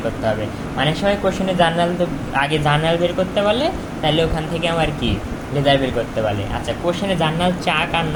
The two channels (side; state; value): both; identical; correlation 1.00